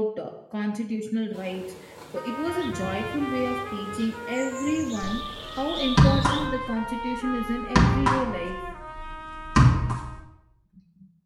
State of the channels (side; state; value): both; identical; correlation 1.00